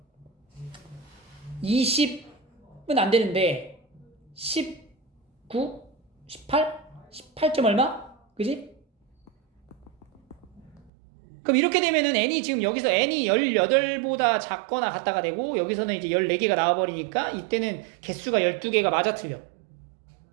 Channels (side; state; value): left; drops out; at 10.9 s